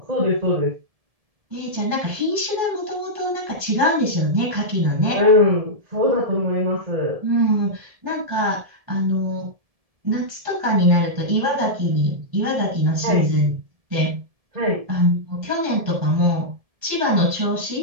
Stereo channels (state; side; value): late; left; 1.7 ms